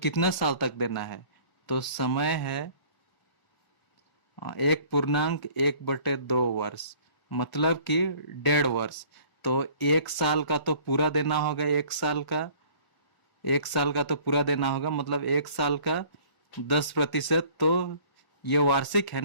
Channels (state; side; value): late; right; 1.5 ms